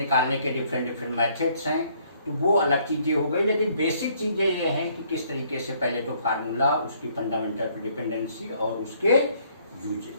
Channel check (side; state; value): both; inverted; correlation -0.65